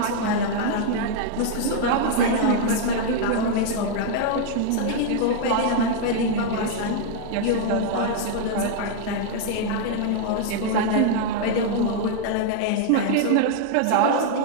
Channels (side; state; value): both; different; correlation -0.01